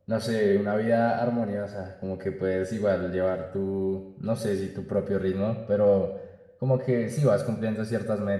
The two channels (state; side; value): identical; both; correlation 1.00